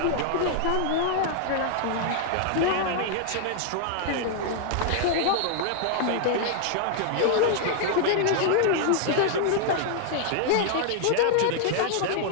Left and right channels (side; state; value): both; different; correlation -0.01